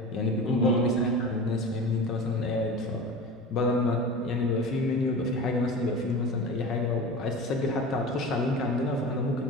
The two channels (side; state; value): both; normal; correlation 0.32